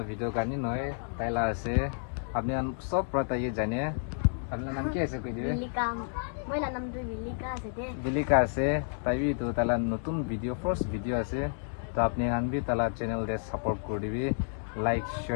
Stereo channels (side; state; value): right; silent; digital silence